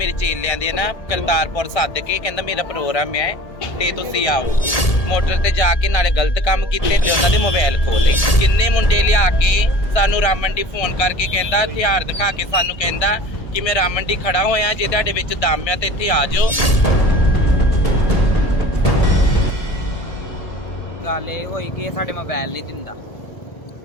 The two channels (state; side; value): late; right; 1.8 ms